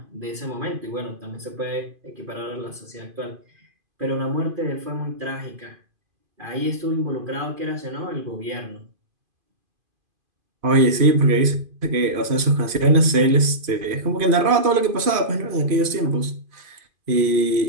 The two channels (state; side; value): late; left; 2.5 ms